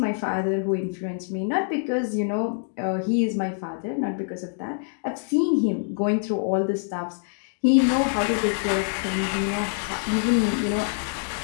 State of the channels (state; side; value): silent; right; digital silence